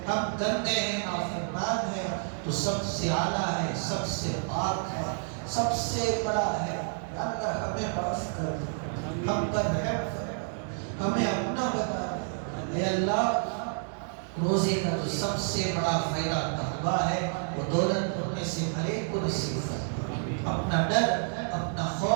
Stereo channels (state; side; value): silent; left; 58 dB below the other